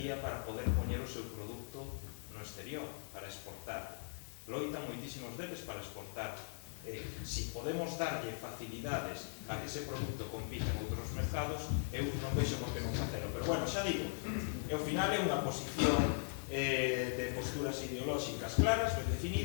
para poder poñer o seu produto no exterior, para exportar. Loitan moitísimos deles para exportar. Si podemos darlle facilidades a que ese produto compite en outros mercados, eu non vexo por que non facelo. Pero bueno, xa digo, ao final é unha posición de posturas ideolóxicas claras, ben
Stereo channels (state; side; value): silent; right; 51 dB below the other